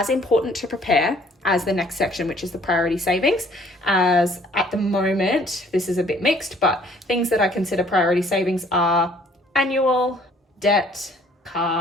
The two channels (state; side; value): normal; both; correlation 0.58